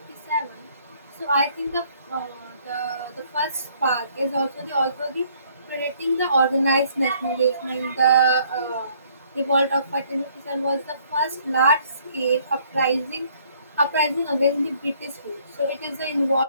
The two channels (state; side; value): inverted; both; correlation -0.63